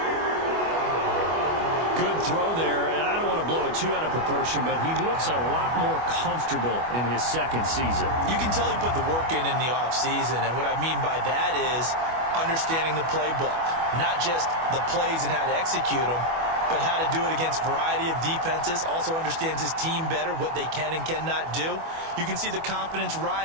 Good throw there, and I don't want to blow it too out of proportion, but he looks a lot more comfortable in his second season. You can tell he put the work in the offseason, and what I mean by that is understanding the playbook, not just the plays and how to execute them, but how to do it against a variety of defenses. Also understands his team better, what they can and cannot do. You can see the confidence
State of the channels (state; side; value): late; left; 25 ms